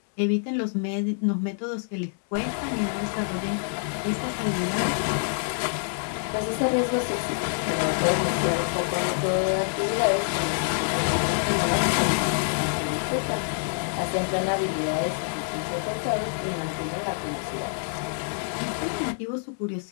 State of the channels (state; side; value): silent; right; digital silence